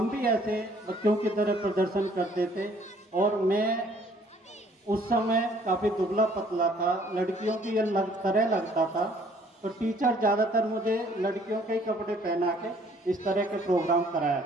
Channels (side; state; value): both; normal; correlation 0.60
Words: भी ऐसे बच्चों की तरह प्रदर्शन करते थे। और मैं उस समय काफ़ी दुबला पतला था, लड़कियों की ये तरह लगता था, तो टीचर ज़्यादातर मुझे लड़कियों के ही कपड़े पहना के इस तरह के प्रोग्राम कराया